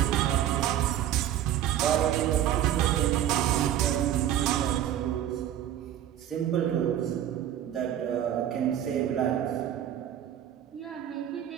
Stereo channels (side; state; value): left; quieter; 11.0 dB